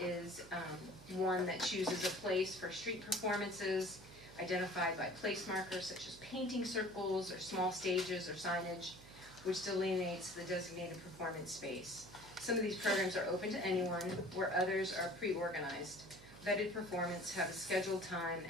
one that chooses a place for street performances identified by place markers such as painting circles or small stages or signage, which delineates the designated performance space. Some of these programs are open to anyone, where others are pre-organized. Vetted performance have a scheduled time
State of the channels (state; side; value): noise; right; hum, 19 dB below the sound